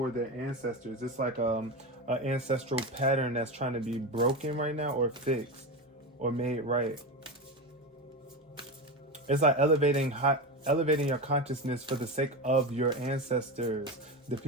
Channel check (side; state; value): both; normal; correlation 0.20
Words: their ancestors. It's like an ancestral pattern that's trying to be broken right now or fixed or made right. It's like elevating your consciousness for the sake of your ancestors, the